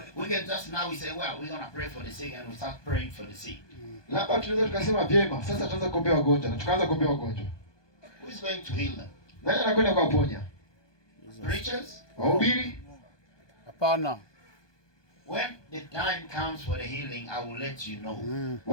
We can just now we say, well, we're going to pray for the sick, and we start praying for the sick. Labda tunaweza tukasema vyema, sasa tutaanza kuombea wagonjwa na tukaanza kuombea wagonjwa. Who is going to heal them? Nani anakwenda kuwaponya? Preachers? Wahubiri? Hapana. When the time comes for the healing, I will let you know.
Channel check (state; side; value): late; right; 1.2 ms